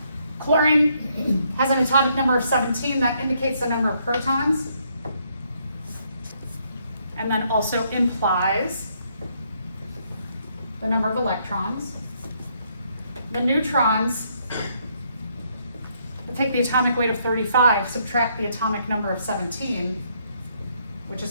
Chlorine has an atomic number of 17, that indicates the number of protons, and then also implies the number of electrons. The neutrons, we'll take the atomic weight of 35, subtract the atomic number of 17, which is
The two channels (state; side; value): inverted; both; correlation -0.72